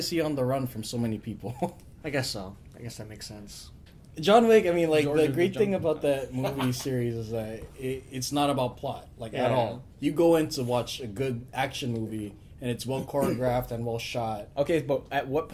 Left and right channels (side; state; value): both; identical; correlation 1.00